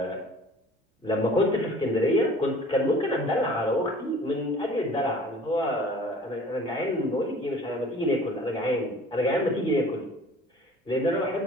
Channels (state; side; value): normal; both; correlation 0.48